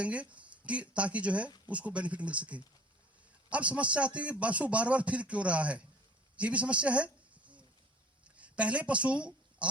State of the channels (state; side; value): normal; both; correlation 0.50